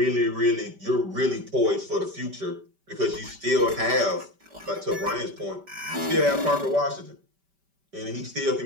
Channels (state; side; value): late; left; 5.1 ms